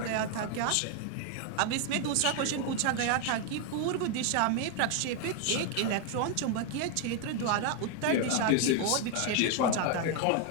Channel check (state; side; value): different; both; correlation 0.01